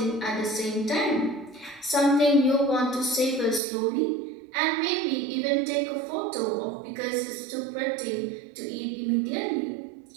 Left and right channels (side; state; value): left; drops out; at 3.6 s